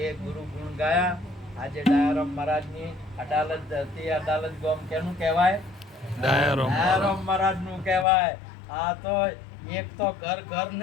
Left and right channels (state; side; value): drops out; right; at 8.1 s